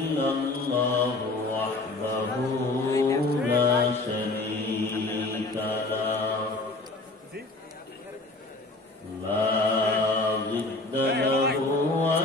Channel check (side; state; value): right; quieter; 3.1 dB